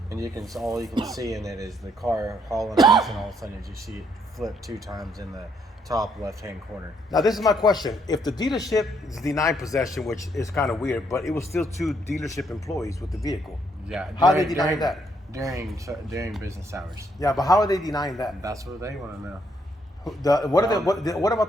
and all you can see in it is the car hauling ass, and all of a sudden you see it flip 2 times in the top left-hand corner. Now this is my question. If the dealership is denying possession, which is kind of weird, but it was still 2 dealership employees with the vehicle. Yeah. How are they denying that? During business hours. Yeah, but how are they denying that? That's what they want to know. What about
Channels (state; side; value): normal; both; correlation 0.72